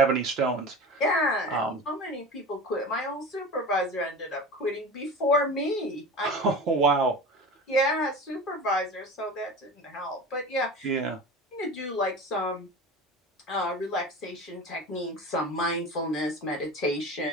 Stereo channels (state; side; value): normal; both; correlation 0.32